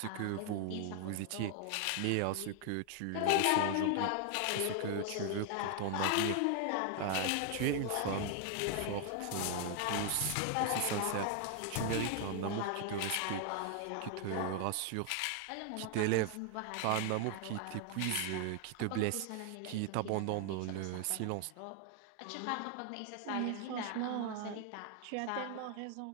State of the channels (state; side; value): different; both; correlation 0.00